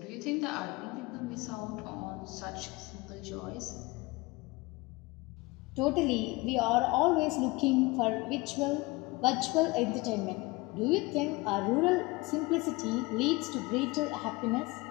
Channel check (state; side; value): quieter; right; 23.4 dB